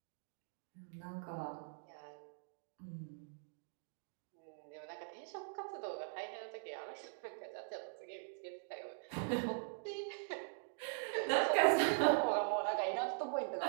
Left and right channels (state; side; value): silent; left; digital silence